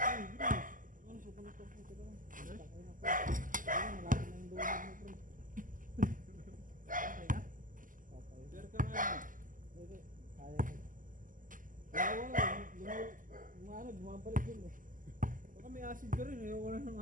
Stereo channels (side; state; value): left; late; 0.38 ms